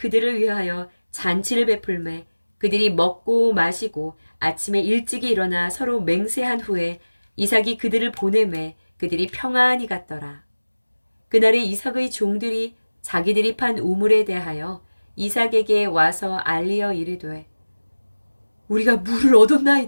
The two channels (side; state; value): both; inverted; correlation -1.00